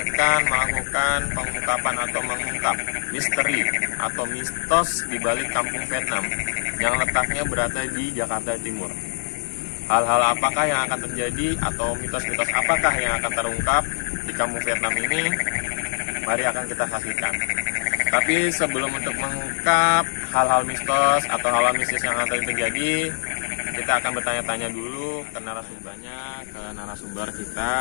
akan melakukan pengungkapan atau mengungkap misteri atau mistos di balik kampung Vietnam yang letaknya berada di Jakarta Timur. Hal-hal apakah yang akan terjadi atau mitos-mitos apakah yang akan terungkap di kampung Vietnam ini? Mari akan kita saksikan. Tapi sebelum untuk mengungkap hal-hal mistos atau hal-hal mistis yang akan terjadi, kita akan bertanya-tanya dulu ke narasumber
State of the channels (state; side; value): silent; right; digital silence